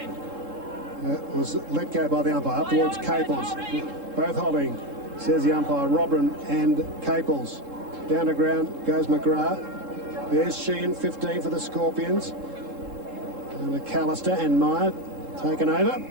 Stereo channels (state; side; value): late; left; 3.7 ms